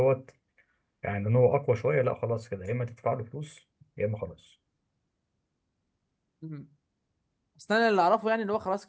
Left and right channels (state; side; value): identical; both; correlation 1.00